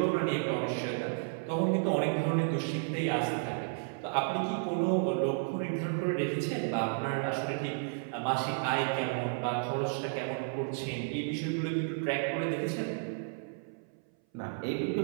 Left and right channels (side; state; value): left; silent; 56 dB below the other